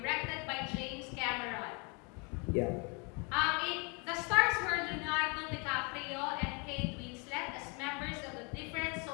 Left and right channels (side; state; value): right; quieter; 33.0 dB